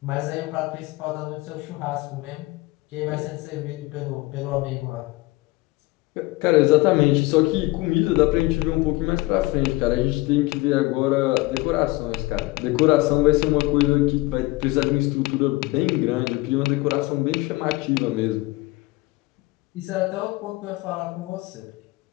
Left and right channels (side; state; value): right; quieter; 20.8 dB